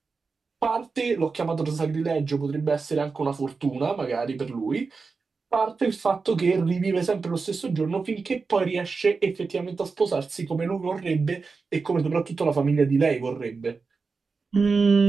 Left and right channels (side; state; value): left; quieter; 4.6 dB